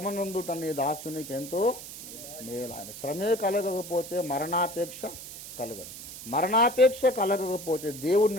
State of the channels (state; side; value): noise; right; hiss, 12 dB below the sound